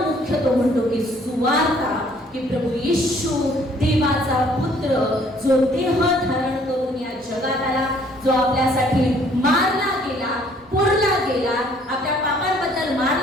मुख्य तो म्हणतो की सुवार्ता, की प्रभू येशू देवाचा पुत्र जो देह धारण करून या जगात आला, जो आपल्यासाठी मारला गेला, पुरला गेला, आपल्या पापांबद्दल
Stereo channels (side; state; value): both; normal; correlation 0.60